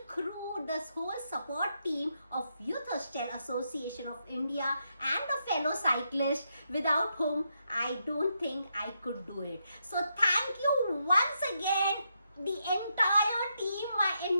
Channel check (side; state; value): both; inverted; correlation -0.81